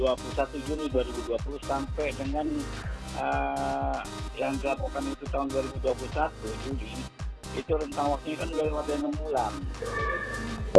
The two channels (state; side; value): identical; both; correlation 1.00